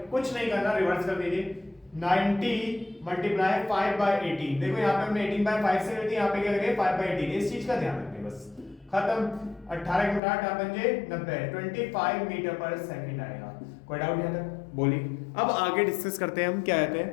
कुछ नहीं करना, रिवर्स कर दीजिए। 90 मल्टीप्लाई 5 बाय 18। देखो यहाँ पे हमने 18 बाय 5 से कर दी, यहाँ पे क्या करेंगे 5 बाय 18। इस चीज का ध्यान रखें, बस खत्म। 18 के 8 बन 90, 25 मीटर पर सेकंड आएगा। कोई डाउट यहाँ तक? बोलिए। अब आगे डिस्कस करते हैं हम क्या कहते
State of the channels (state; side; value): drops out; right; at 10.2 s